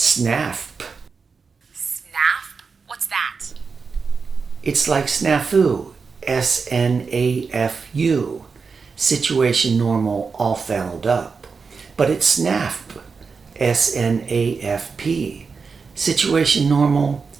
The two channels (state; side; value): quieter; left; 5.1 dB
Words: SNAF? What's that? It's like snafu, S-N-A-F-U, situation normal all fouled up. But it's SNAF, S-N-A-F-P, situation normal